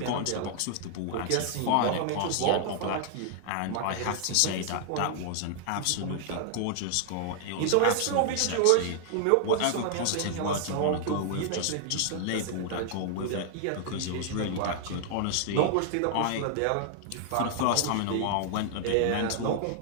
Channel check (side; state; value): both; different; correlation 0.00